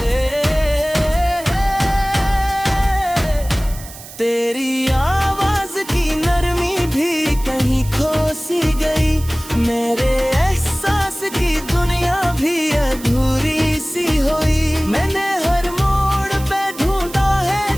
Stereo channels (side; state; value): right; noise; hiss, 16 dB below the sound